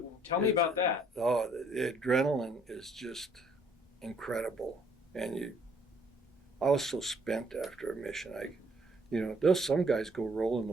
Tell me about that. Oh, the adrenaline is just incredible, and I was so spent after a mission. There's some guys go rolling the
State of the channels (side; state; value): both; normal; correlation 0.63